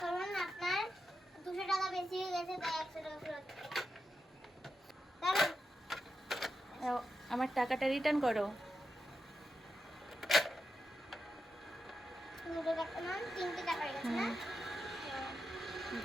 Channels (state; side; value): normal; both; correlation 0.88